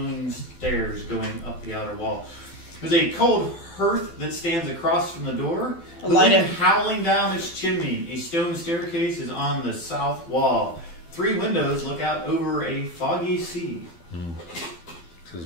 stairs going up the outer wall. There's a cold hearth that stands across from the door. The Light wind it. howling down its chimney. A stone staircase is on the south wall. 3 windows look out over a foggy sea.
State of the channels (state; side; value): late; right; 12 ms